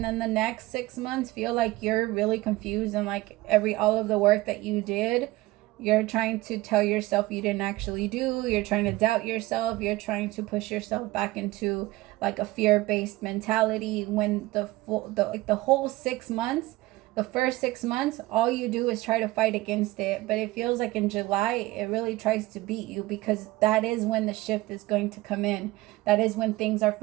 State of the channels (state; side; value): quieter; left; 19.0 dB